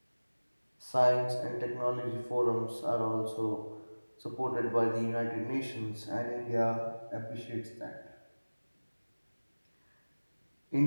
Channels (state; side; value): inverted; both; correlation -1.00